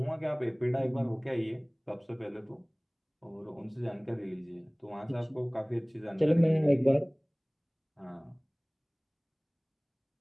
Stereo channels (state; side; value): identical; both; correlation 1.00